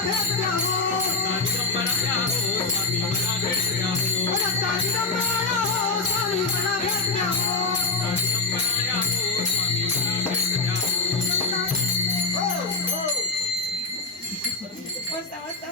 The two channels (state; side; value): quieter; right; 3.8 dB